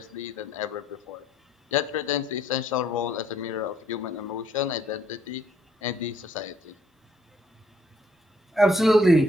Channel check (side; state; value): both; normal; correlation 0.67